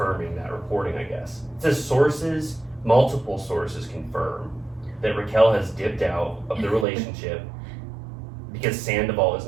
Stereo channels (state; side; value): drops out; left; at 6.9 s